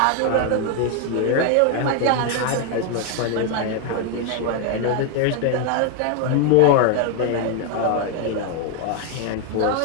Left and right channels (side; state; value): both; different; correlation 0.01